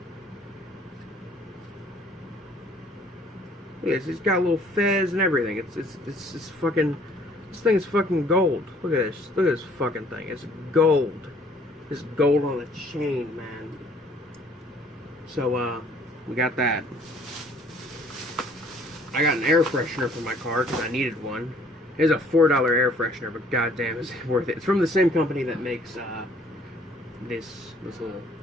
Look at this. It's got a little fez and everything. It's fucking. This thing is fucking gold. Look at this. Look at this fucking thing. It's gold. It's gold on a chain, man. So, we got that. I got an air freshener for my car because I needed one. It's a $4 air freshener, but goddamn, it's worth it. It's from the same company that makes this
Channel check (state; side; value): normal; both; correlation 0.58